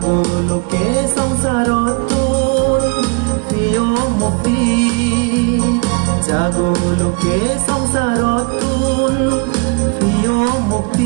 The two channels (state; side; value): quieter; left; 32.4 dB